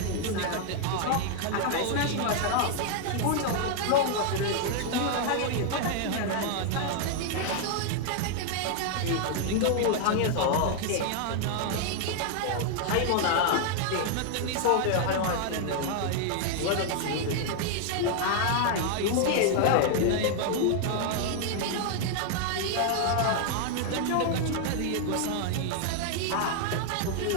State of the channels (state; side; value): different; both; correlation 0.00